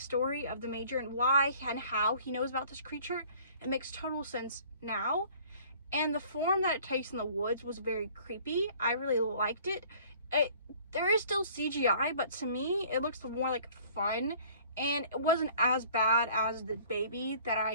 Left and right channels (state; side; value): inverted; both; correlation -0.52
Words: of the Major and why and how he knows about this creature. It makes total sense now. And the form that it takes in the woods was very creepy. I really liked it. There is still CGI, but to me, it looks more like fun. And it wasn't as bad as the baby that